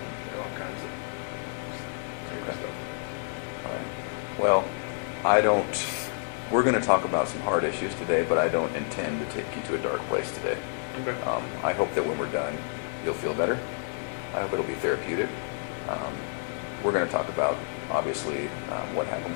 know, all kinds of crazy stuff. All right. Well, we're going to talk about some hard issues today, but I don't intend to take you to a dark place today. Okay. I hope that when we're done, you'll feel better. I hope it'll be therapeutic. We're going to talk about, obviously, what happened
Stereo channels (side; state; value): right; silent; 59 dB below the other